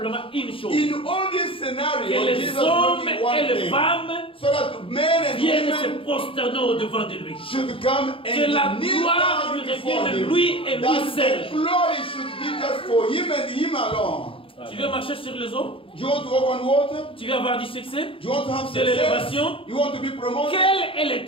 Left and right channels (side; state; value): right; late; 0.26 ms